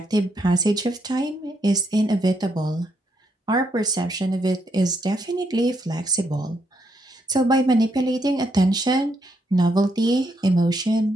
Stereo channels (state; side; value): normal; both; correlation 0.77